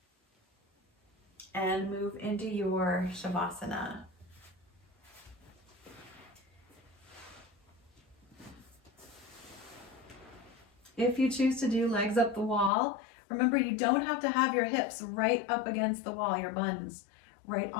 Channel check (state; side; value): drops out; right; at 12.7 s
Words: and move into your Savasana. If you choose to do legs up the wall, remember you don't have to have your hips right up against the wall, your buns right